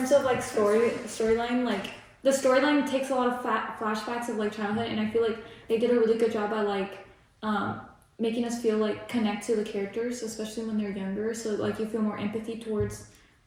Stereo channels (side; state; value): both; identical; correlation 1.00